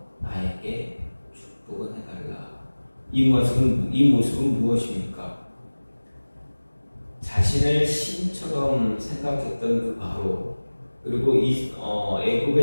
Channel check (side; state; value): both; inverted; correlation -1.00